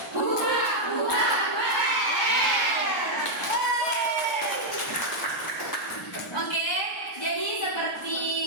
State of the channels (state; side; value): normal; both; correlation -0.02